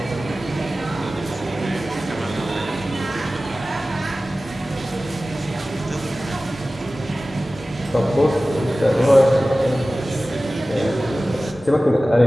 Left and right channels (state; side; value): normal; both; correlation 0.96